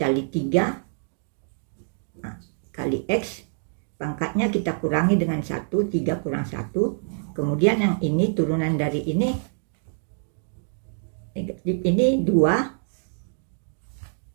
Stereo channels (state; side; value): silent; left; digital silence